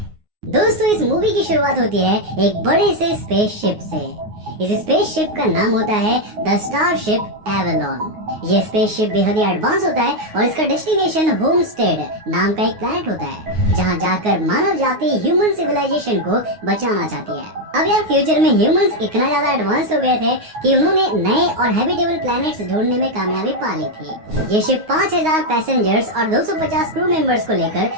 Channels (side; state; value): left; late; 9.5 ms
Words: दोस्तों, इस मूवी की शुरुआत होती है एक बड़े से स्पेसशिप से। इस स्पेसशिप का नाम होता है द स्टारशिप एवेलॉन। ये स्पेसशिप बेहद ही एडवांस होता है और इसका डेस्टिनेशन होमस्टेड नाम का एक प्लैनेट होता है, जहाँ जाकर मानव जाति ह्यूमन सिविलाइजेशन को बचाना चाहती है। अब यार, फ्यूचर में ह्यूमंस इतना ज्यादा एडवांस हो गए थे कि उन्होंने नए और हैबिटेबल प्लैनेट्स ढूंढने में कामयाबी पा ली थी। ये शिप 5000 पैसेंजर्स और 250 क्रू मेंबर्स को लेकर